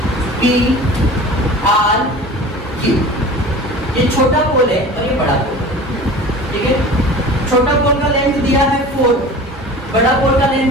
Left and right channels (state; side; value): normal; both; correlation 0.38